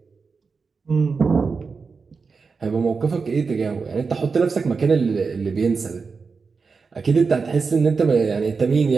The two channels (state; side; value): quieter; left; 4.9 dB